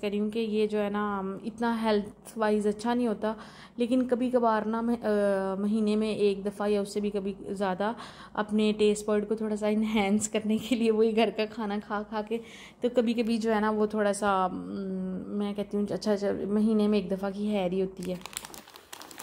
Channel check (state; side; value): identical; both; correlation 1.00